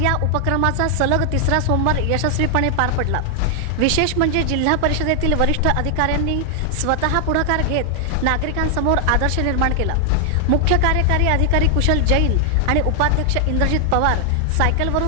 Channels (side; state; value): both; different; correlation 0.00